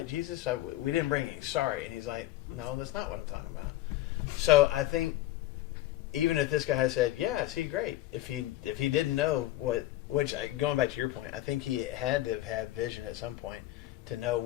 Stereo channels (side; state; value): right; quieter; 15.4 dB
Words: Jesus, we didn't bring any. Sorry. And he's like, no, that's not what I'm talking about. So I think even if this guy had said, yeah, I see, great. If he didn't know which going back to your point, I think he had to have had vision at some point to know